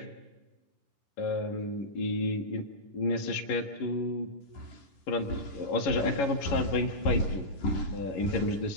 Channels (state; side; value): late; right; 11 ms